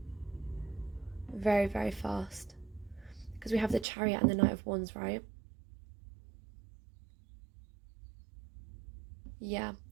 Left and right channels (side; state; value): left; drops out; at 3.9 s